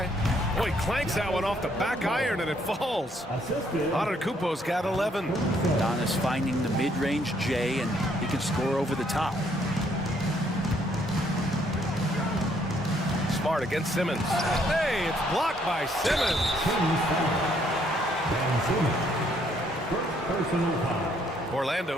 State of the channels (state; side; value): normal; both; correlation 0.68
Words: Boy, clanks that one off the back iron and it falls. Antetokounmpo's got 11. Donis finding the mid-range J, and he can score over the top. Smart against Simmons. Hey, it's blocked by Simmons. First personal foul.